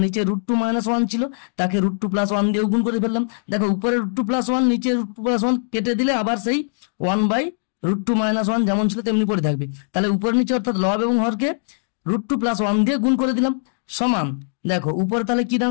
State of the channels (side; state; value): right; silent; digital silence